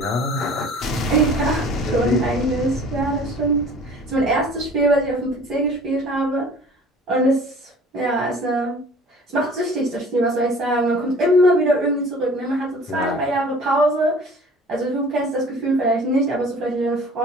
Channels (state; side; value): normal; both; correlation 0.47